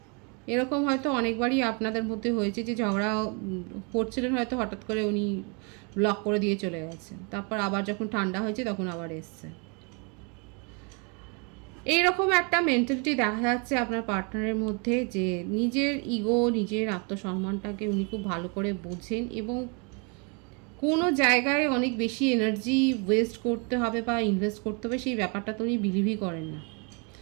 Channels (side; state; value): left; quieter; 33.9 dB